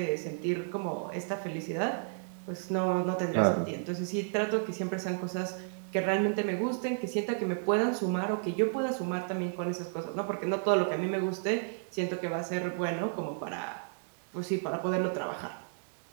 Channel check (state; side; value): silent; left; digital silence